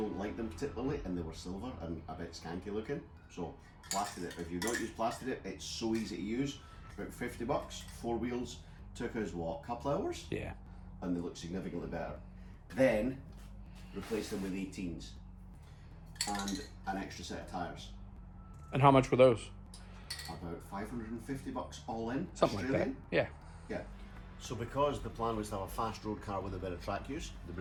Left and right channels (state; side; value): identical; both; correlation 1.00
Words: like them particularly, and they were silver and a bit skanky looking. So plastered it. If you don't use plastered it, it's so easy to use. About 50 bucks, 4 wheels. Took us what, a couple hours? Yeah. And they look significantly better. Then replaced them with 18s and an extra set of tyres. And how much were those? About 550 bucks all in. Something Australian. like that. Yeah. Yeah. So because the plan was to have a fast road car with a bit of track use, the